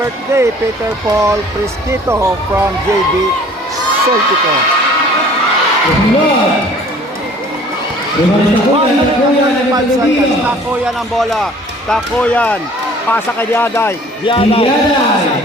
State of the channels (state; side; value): normal; both; correlation 0.51